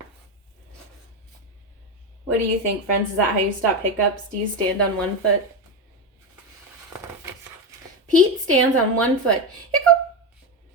What do you think, friends? Is that how you stop hiccups? Do you stand on one foot? Pete stands on one foot. Hiccup!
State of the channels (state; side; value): normal; both; correlation 0.14